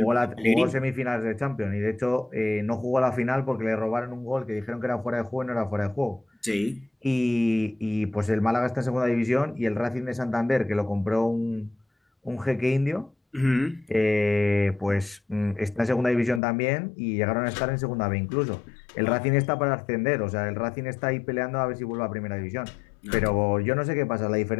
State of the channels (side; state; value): right; drops out; at 16.4 s